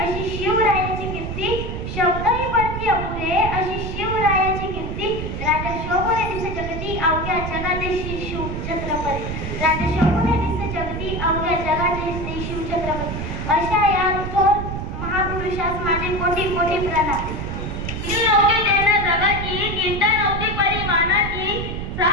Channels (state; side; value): noise; right; rumble, 5 dB below the sound